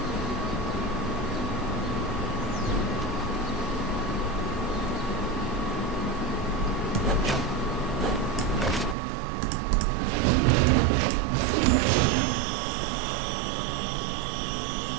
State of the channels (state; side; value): drops out; left; at 9.0 s